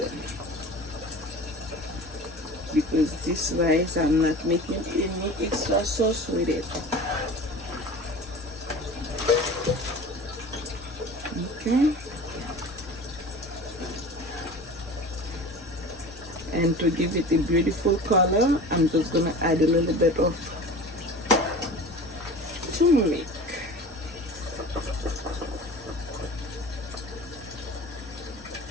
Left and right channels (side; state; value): both; normal; correlation 0.37